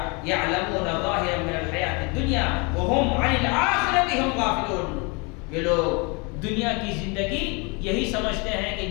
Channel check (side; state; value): right; quieter; 30.4 dB